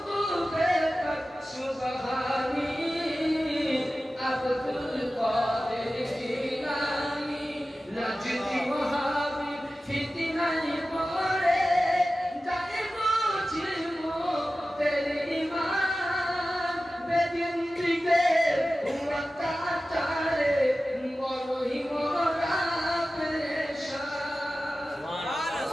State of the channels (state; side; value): normal; both; correlation 0.95